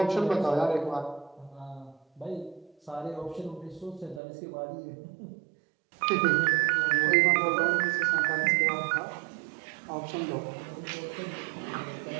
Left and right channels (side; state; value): left; drops out; at 4.2 s